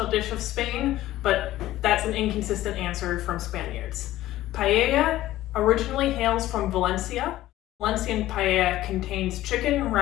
dish of Spain, but that's an inconsistent answer from Spaniards. Paella originally hails from Valencia. Valencian paella contains chicken,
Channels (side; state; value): right; quieter; 15.1 dB